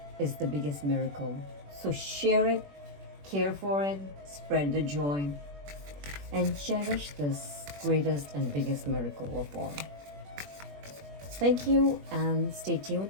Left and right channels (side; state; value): left; late; 21 ms